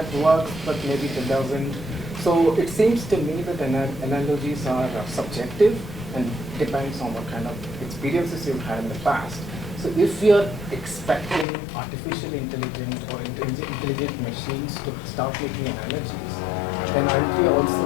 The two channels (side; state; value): right; drops out; at 11.5 s